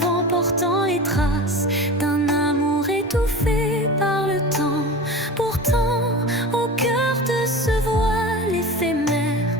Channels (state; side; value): normal; both; correlation 0.32